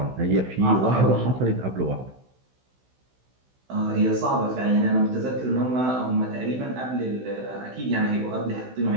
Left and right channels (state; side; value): late; left; 16 ms